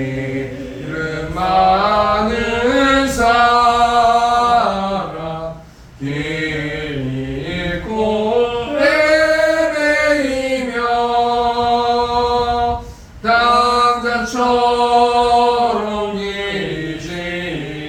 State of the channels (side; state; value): both; identical; correlation 1.00